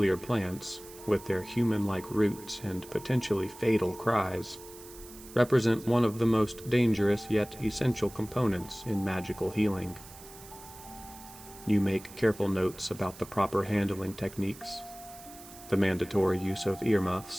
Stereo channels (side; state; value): right; noise; hiss, 18 dB below the sound